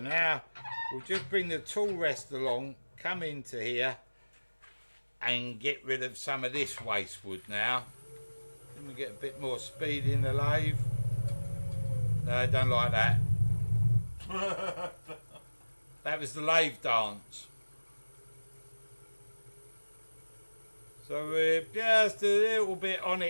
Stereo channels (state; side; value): inverted; both; correlation -1.00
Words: we'll just bring the tool rest along, come into here and get rid of some of this waste wood now. Then we get a bit more speed in the lathe. No, I don't like that. That was the lathe dance. So we're just a little bit on